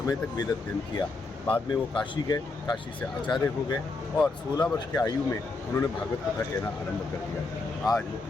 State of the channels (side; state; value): right; quieter; 3.6 dB